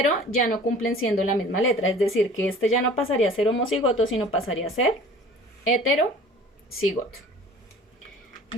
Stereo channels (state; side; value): normal; both; correlation 0.46